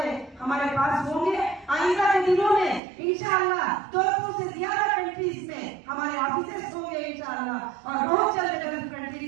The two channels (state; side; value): drops out; left; at 2.8 s